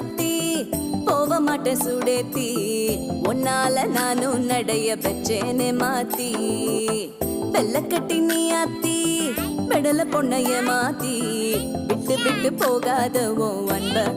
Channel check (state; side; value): identical; both; correlation 1.00